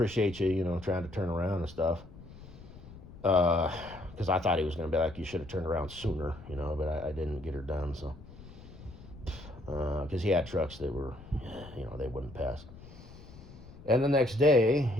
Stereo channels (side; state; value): left; noise; rumble, 17 dB below the sound